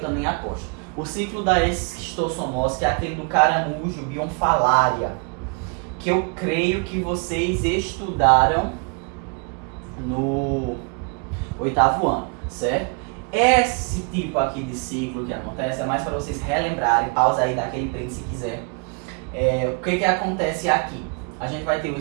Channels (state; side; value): quieter; left; 35.2 dB